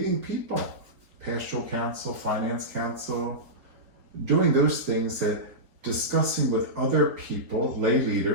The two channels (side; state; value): left; late; 4.2 ms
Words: people, pastoral council, finance council, doing those things discussing with other people, lay